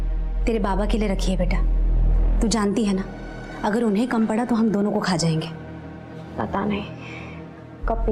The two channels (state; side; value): identical; both; correlation 1.00